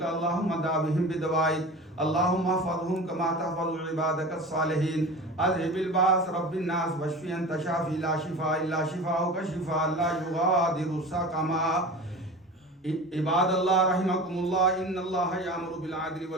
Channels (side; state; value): both; normal; correlation 0.34